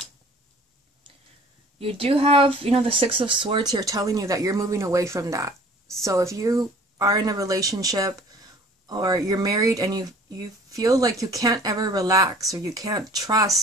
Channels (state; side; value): normal; both; correlation 0.50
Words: You do have, you know, the Six of Swords here telling you that you're moving away from that. So if you are in a relationship or you're married and you feel like you can't ever relax, or you can't